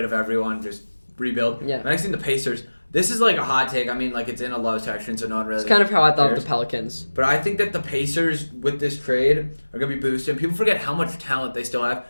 of everyone. Just rebuild. Yeah. Next team, the Pacers. This is like a hot take. I mean, like it's in a low section, so no one really. It's kind of how I thought of the Pelicans. But I think that the Pacers with this trade are gonna be boosted. People forget how much talent they still have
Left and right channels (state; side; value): inverted; both; correlation -1.00